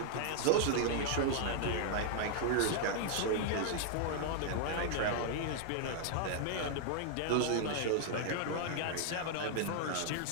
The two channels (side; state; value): both; different; correlation -0.01